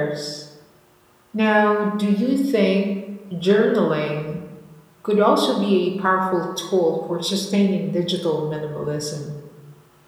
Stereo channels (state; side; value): identical; both; correlation 1.00